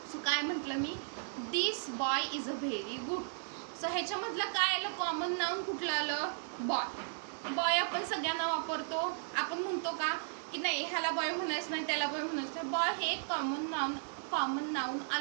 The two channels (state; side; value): silent; left; digital silence